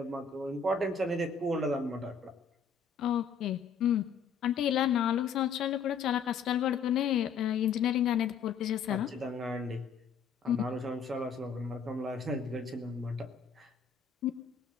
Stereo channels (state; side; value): quieter; right; 6.1 dB